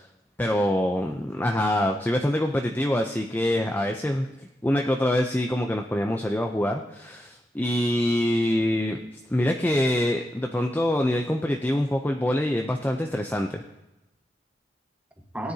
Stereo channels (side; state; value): both; normal; correlation 0.86